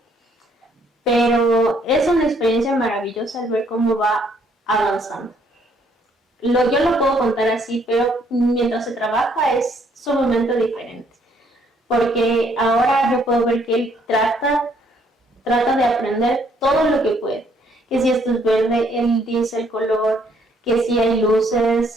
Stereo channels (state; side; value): normal; both; correlation 0.67